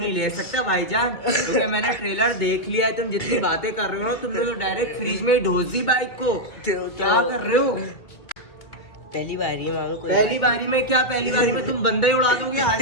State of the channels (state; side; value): late; right; 2.2 ms